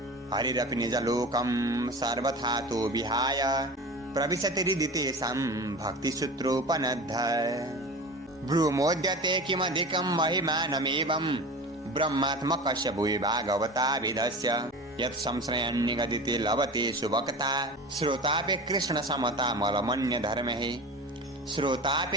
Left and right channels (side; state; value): both; normal; correlation 0.33